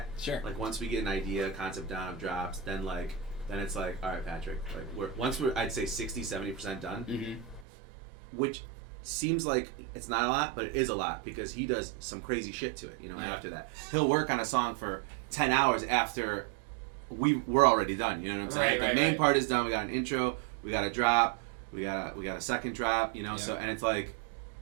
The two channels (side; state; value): left; drops out; at 7.7 s